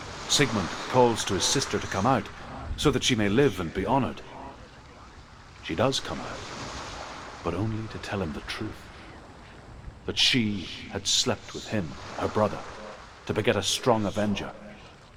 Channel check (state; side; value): identical; both; correlation 1.00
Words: Sigmund calls to his sister to come out so that she may live and be honored. She does come out, but only to tell him the truth. That she had slept with him, her brother, to beget a strong avenger.